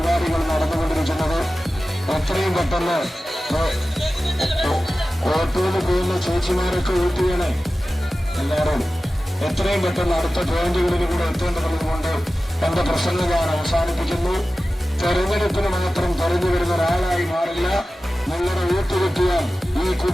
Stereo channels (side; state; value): both; normal; correlation 0.95